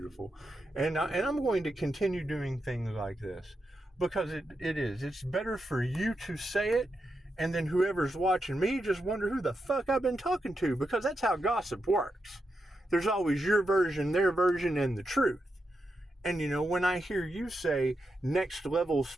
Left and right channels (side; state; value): both; normal; correlation 0.86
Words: And I'm going to continue doing things like this because it's better for you to say it, and then whoever's watching me just wonder who the fuck I've been talking to, because that's how gossip works. There's always your version, their version, and the truth. And you know, when I hear you say next level